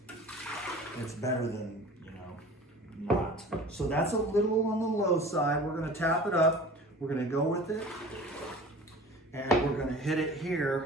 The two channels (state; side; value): normal; both; correlation 0.41